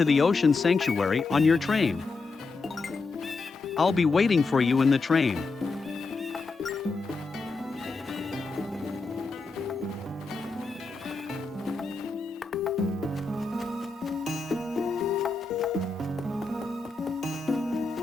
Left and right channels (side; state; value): right; quieter; 3.9 dB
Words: the Ocean Sanctuary on your train. I'll be waiting for you in the train.